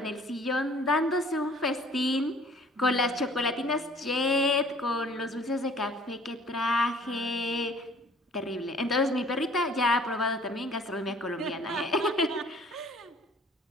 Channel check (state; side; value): normal; both; correlation 0.53